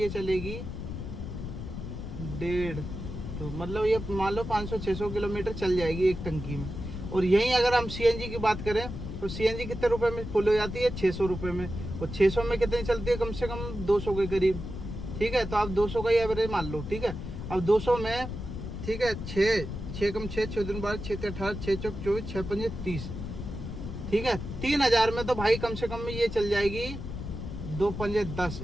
चलेगी 1.5, तो मतलब ये मान लो 500-600 किलोमीटर चल जाएगी एक टंकी में। और यहीं अगर हम सीएनजी की बात करें तो सीएनजी कितने रुपए में फुल हो जाती है? 600 रुपए में। और 600 में कितनी चलती है? कम से कम 200 के करीब, ठीक है। तो आप 200 का ही एवरेज मान लो, ठीक है। अब 200 में, ठीक है, 6 कम 6 दिन 12 6 18 6 चौक 24 6 5 30, ठीक है। 3000 में तो भाई कम से कम ये चल जाएगी 2 5 10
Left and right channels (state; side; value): noise; left; rumble, 7 dB below the sound